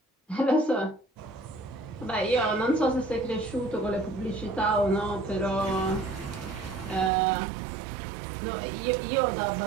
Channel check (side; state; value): left; drops out; at 7.1 s